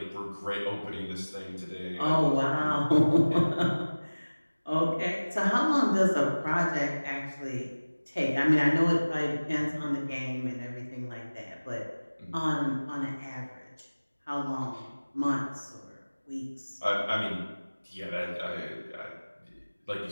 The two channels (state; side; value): inverted; both; correlation -1.00